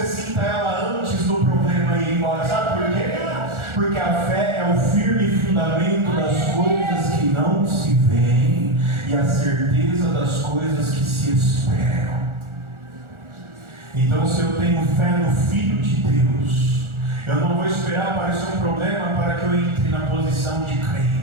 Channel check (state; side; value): late; left; 1.4 ms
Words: sinta ela antes do problema ir embora. Sabe por quê? Porque a fé é o firme fundamento das coisas que não se veem e a certeza das coisas que se esperam. Então, se eu tenho fé no Filho de Deus, eu não vou esperar aparecer um problema para que eu entre na posição de